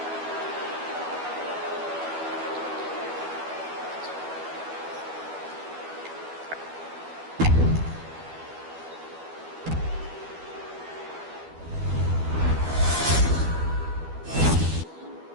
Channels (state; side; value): late; left; 12 ms